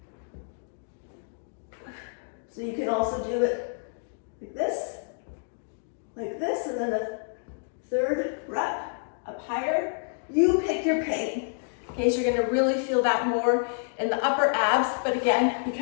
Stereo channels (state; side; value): silent; right; digital silence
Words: So you can also do it like this, and then the third rep up higher. You pick your pain. Okay, so you're gonna really feel that more in the upper abs, but again,